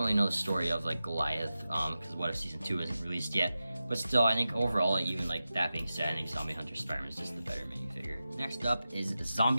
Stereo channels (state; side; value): inverted; both; correlation -0.93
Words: know the story of like Goliath because What If Season 2 isn't released yet. But still, I think overall, even like that being said, I think Zombie Hunter Spider-Man is just the better minifigure. Next up is